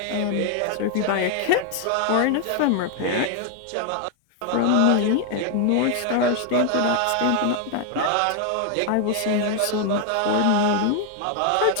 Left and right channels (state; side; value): different; both; correlation 0.00